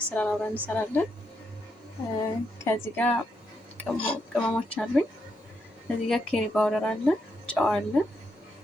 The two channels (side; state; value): both; normal; correlation 0.80